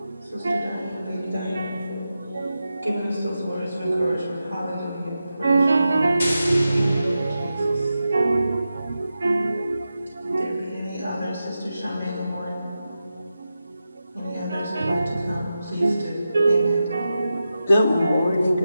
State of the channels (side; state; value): both; inverted; correlation -0.91